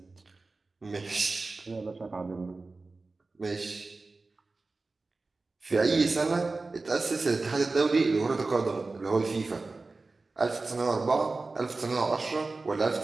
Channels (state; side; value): quieter; left; 3.6 dB